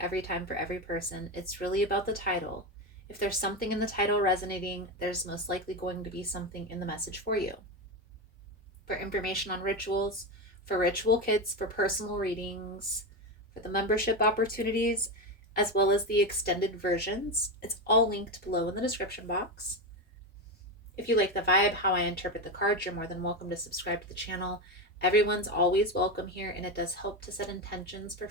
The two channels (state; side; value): normal; both; correlation 0.15